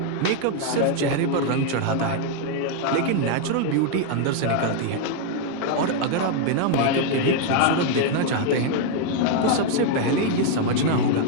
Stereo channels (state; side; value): different; both; correlation 0.00